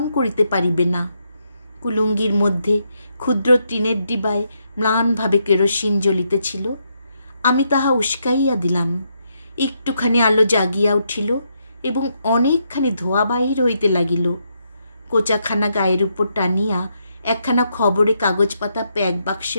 করিতে পারিবে না। কুলুঙ্গির মধ্যে ক্ষুদ্র টিনের ডিবায় ম্লানভাবে কেরোসিন জ্বলিতেছিল। আমি তাহা উস্কাইয়া দিলাম। একটুখানি আলো জাগিয়া উঠিল এবং অনেকখানি ধোঁয়া বাহির হইতে লাগিল। কোচাখানা গায়ের উপর টানিয়া একখানা খবরে কাগজ পাতা প্যাক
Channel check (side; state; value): both; inverted; correlation -0.79